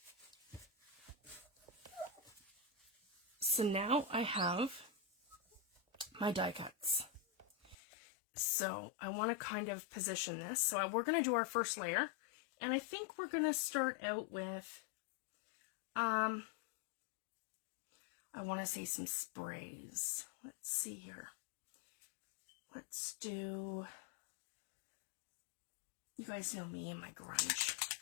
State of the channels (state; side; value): drops out; right; at 7.8 s